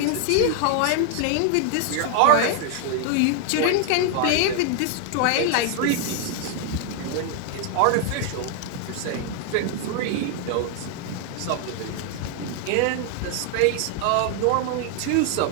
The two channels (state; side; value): different; both; correlation 0.00